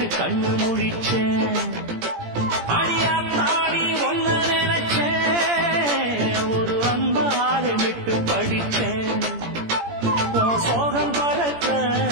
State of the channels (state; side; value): late; left; 17 ms